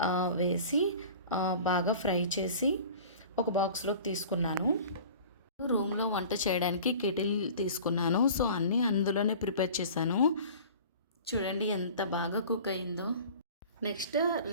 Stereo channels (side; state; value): both; inverted; correlation -0.42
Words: వేసి బాగా ఫ్రై చేసి ఒక బాక్స్లోకి తీసుకున్నాను. రూమ్లో వంట చేయడానికి కెటిల్ తీసుకున్నాను. సో అన్నీ అందులోనే ప్రిపేర్ చేశాను. చూడండి ఎంత బాగా కుక్ అయిందో. నెక్స్ట్